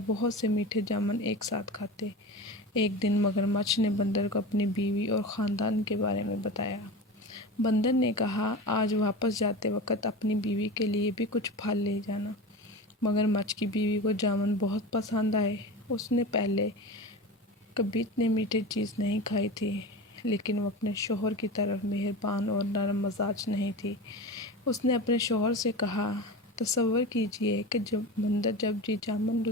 بہت سے میٹھے جامن ایک ساتھ کھاتے۔ ایک دن مگرمچھ نے بندر کو اپنی بیوی اور خاندان کے بارے میں بتایا۔ بندر نے کہا، آج واپس جاتے وقت اپنی بیوی کے لیے بھی کچھ پھل لے جانا۔ مگرمچھ کی بیوی کو جامن بہت پسند آئے۔ اس نے پہلے کبھی اتنے میٹھے چیز نہیں کھائی تھی، لیکن وہ اپنے شوہر کی طرح مہربان اور نرم مزاج نہیں تھی۔ اس نے اپنے شوہر سے کہا، تصور کیجئے کہ بندر جب یہ جامن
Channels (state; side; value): normal; both; correlation 0.29